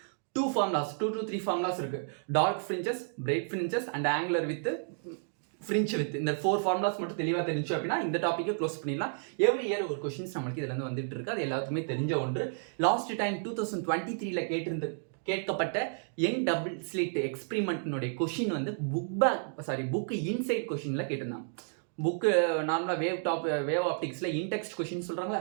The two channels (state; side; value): silent; left; digital silence